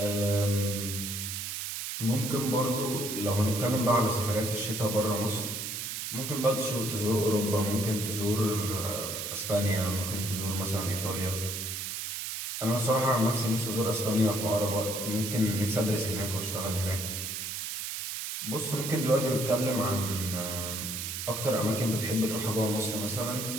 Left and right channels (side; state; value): right; noise; hiss, 4 dB below the sound